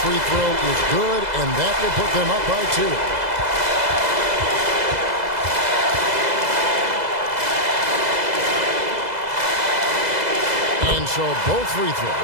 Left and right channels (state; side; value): late; left; 2.0 ms